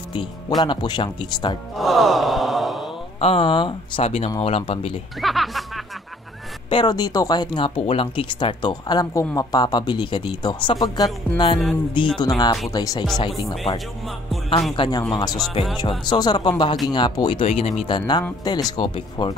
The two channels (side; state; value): both; normal; correlation 0.58